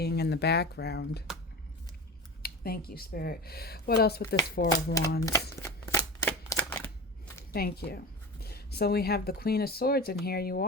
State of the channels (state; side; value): normal; both; correlation 0.29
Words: in the background. Thank you, Spirit. What else with this Four of Wands? Thank you. So we have the Queen of Swords, and here you